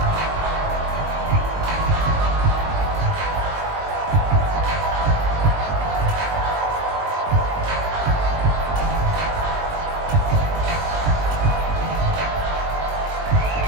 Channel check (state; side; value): late; left; 20 ms